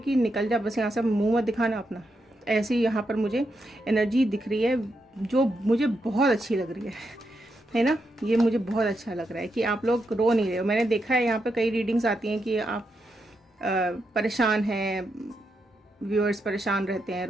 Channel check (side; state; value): both; normal; correlation 0.83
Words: निकल जा, बस यहाँ से मुंह मत दिखाना अपना। ऐसी यहाँ पर मुझे एनर्जी दिख रही है जो मुझे बहुत अच्छी लग रही है ना। ये मुझे बहुत अच्छा लग रहा है कि आप लोग रो नहीं रहे हो। मैंने देखा है यहाँ पर कई रीडिंग्स आती हैं कि आप परेशान हैं, व्यूअर्स परेशान रहते हैं,